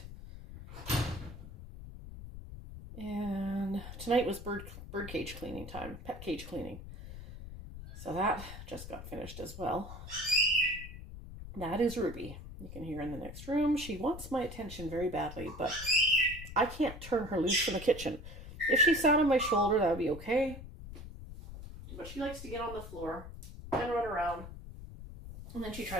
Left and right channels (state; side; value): noise; left; rumble, 12 dB below the sound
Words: And tonight was bird cage cleaning time, pet cage cleaning. So that just got finished as well. That is Ruby. You can hear in the next room. She wants my attention very badly, but I can't turn her loose from the kitchen. If she sat on my shoulder, that would be okay. But she likes to get on the floor and run around. And then she